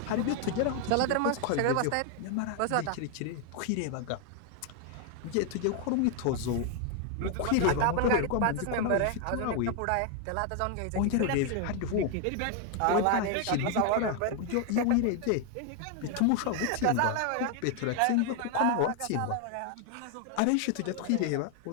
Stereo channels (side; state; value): both; different; correlation 0.00